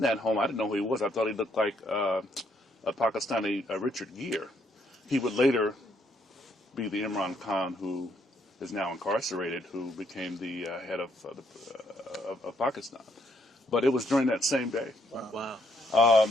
home. I didn't know who he was. I thought he looked like a Pakistani Richard Gere. He would later be the Imran Khan who is now incarcerated, who became the head of Pakistan. But it was during that same day. Wow.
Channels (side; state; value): both; normal; correlation 0.71